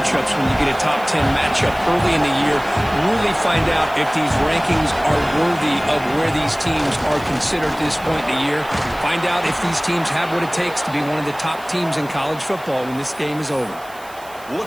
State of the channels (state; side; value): noise; right; hiss, 22 dB below the sound